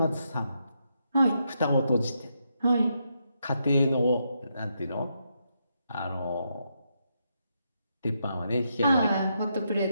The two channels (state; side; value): inverted; both; correlation -0.81